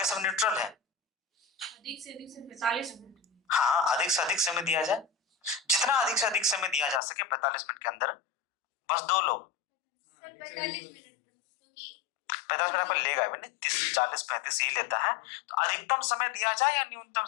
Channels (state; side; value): drops out; right; at 7.0 s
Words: सब न्यूट्रल है। अधिक से अधिक से 45 मिनट। हाँ, अधिक से अधिक समय दिया जाए, जितना अधिक से अधिक समय दिया जा सके 45 मिनट के अंदर। बस 2 लोग 45 मिनट, क्योंकि 45 मिनट पर लेगा भी नहीं, 30, 40, 35 ही लेता है। तो अधिकतम समय दिया जाए या न्यूनतम